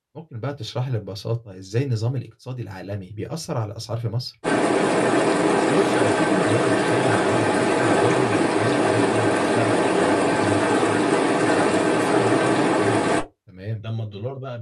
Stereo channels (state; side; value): identical; both; correlation 1.00